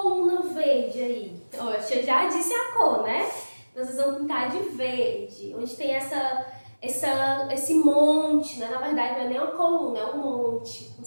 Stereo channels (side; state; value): both; inverted; correlation -1.00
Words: verde aí. Oxe, eu já disse a cor, né? Vocês vão pintar de verde, onde tem esse monte, né? Na verdade não é nem uma coluna, é um monte, como